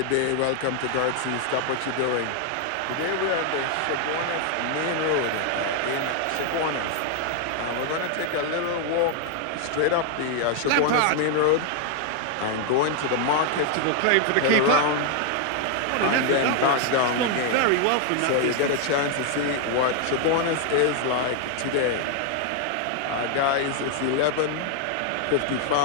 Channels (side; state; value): both; different; correlation 0.00